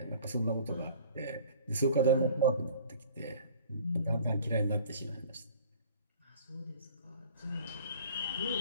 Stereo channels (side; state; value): both; inverted; correlation -0.48